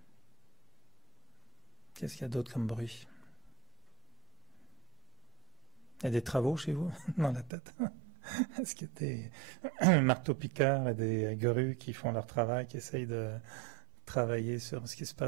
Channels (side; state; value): left; drops out; at 7.5 s